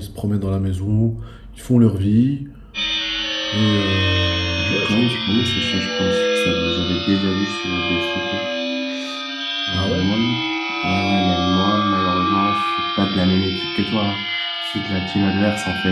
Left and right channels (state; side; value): identical; both; correlation 1.00